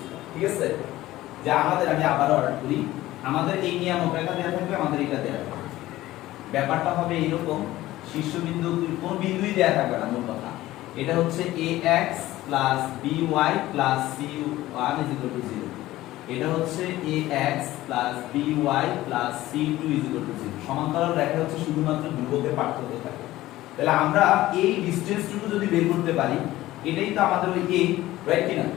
ঠিক আছে? যে আমাদের আমি আবার অর্ডার করি, আমাদের এই নিয়ামক রেখা দেওয়া থাকবে, আমাদের এটা দেওয়া থাকবে। ব্যাপারটা হবে এরকম, শীর্ষবিন্দু কোন বিন্দুই দেওয়া থাকবে না মূল কথা। এটা হচ্ছে ax by c1 0। এটা হচ্ছে ax by c2 0। সমান্তরাল রেখা হচ্ছে শুধুমাত্র ধ্রুবকের পার্থক্য থাকে। তাহলে আমরা এই ডিসটেন্সটুকু যদি বের করতে পারি, এটাই তো আমাদের ওই a, রাইট কি না?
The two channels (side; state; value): right; quieter; 16.2 dB